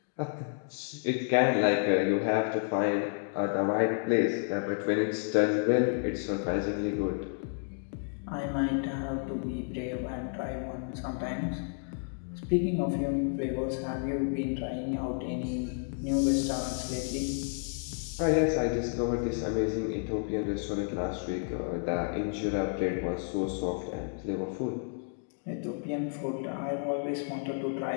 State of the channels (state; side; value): silent; right; 57 dB below the other